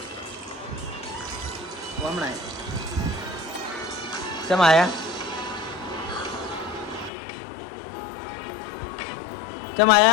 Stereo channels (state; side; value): drops out; right; at 7.1 s